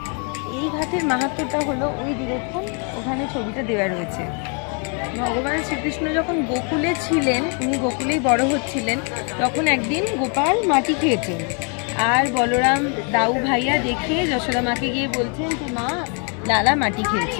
এই ঘাটের মাহাত্ম্যটা হলো ওই দেখুন ওখানে ছবিটা দেওয়া রয়েছে। ভগবান শ্রীকৃষ্ণ যখন গোকুলে ছিলেন, উনি গোকুলেই বড় হচ্ছিলেন, তখন একদিন গোপাল মাটি খেয়েছেন। আর বলরাম দাউ ভাইয়া দেখে যশোদা মাকে গিয়ে বলছেন যে মা, লালা মাটি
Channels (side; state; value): right; quieter; 38.5 dB